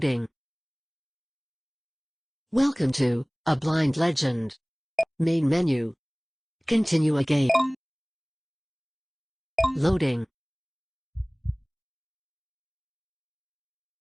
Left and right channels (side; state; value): both; identical; correlation 1.00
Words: Welcome to A Blind Legend. Main menu. Continue a game. Loading.